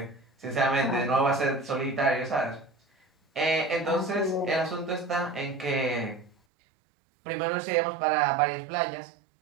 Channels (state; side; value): drops out; left; at 6.4 s